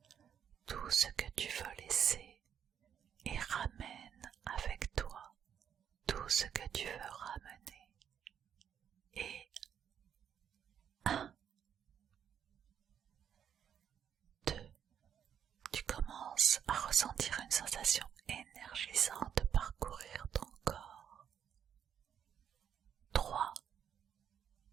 tout ce que tu veux laisser et ramène avec toi tout ce que tu veux ramener. Et 1, 2, tu commences à ressentir une sensation énergisante parcourir ton corps. 3,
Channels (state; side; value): quieter; left; 8.6 dB